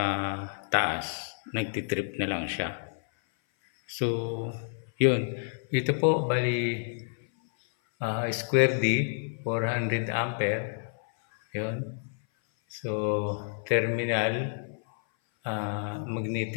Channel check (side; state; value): right; silent; 57 dB below the other